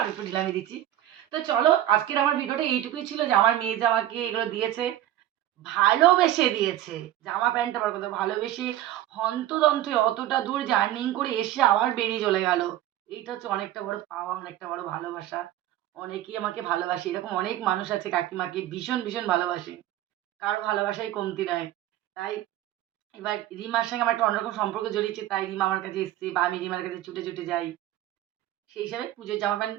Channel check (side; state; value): left; quieter; 13.3 dB